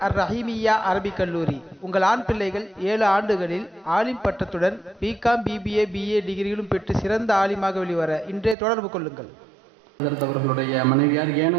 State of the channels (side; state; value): left; drops out; at 8.6 s